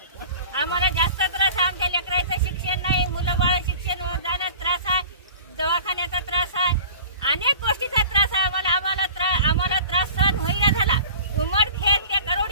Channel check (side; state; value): both; inverted; correlation -0.41